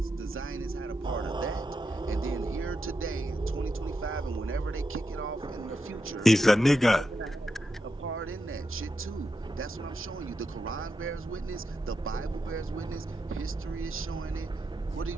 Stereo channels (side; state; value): both; normal; correlation 0.86